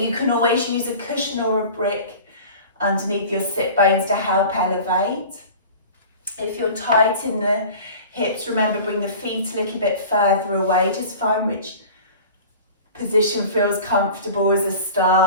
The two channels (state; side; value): inverted; both; correlation -0.40